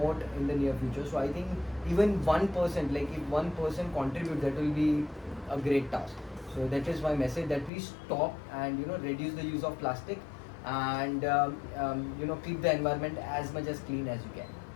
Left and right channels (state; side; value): drops out; right; at 7.7 s